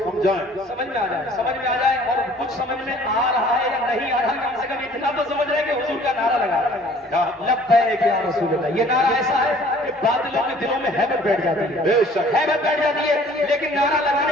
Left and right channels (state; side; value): normal; both; correlation 0.53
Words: समझाएं, समझ में आ जाए और कुछ समझ में आ रहा है या नहीं आ रहा, कम से कम इतना तो समझ रहे हैं कि हुजूर का नारा लगा रहा है लब्बैक या रसूल अल्लाह। ये नारा ऐसा है कि बादलों के दिलों में हैबत बैठ जाती है, हैबत बैठ जाती है, लेकिन नारा